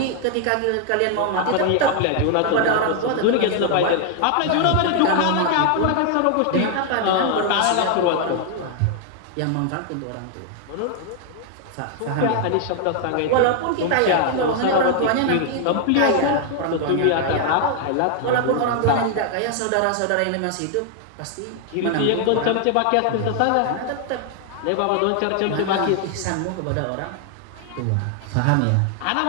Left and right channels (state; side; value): different; both; correlation 0.00